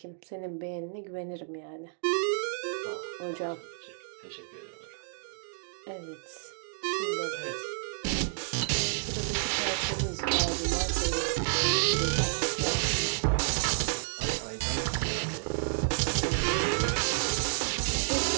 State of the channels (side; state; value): left; silent; digital silence